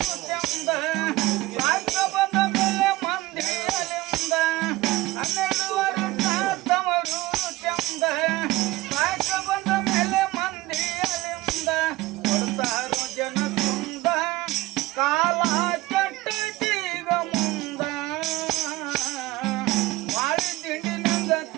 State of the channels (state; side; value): quieter; left; 19.1 dB